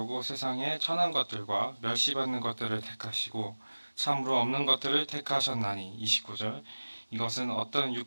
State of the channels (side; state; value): both; inverted; correlation -1.00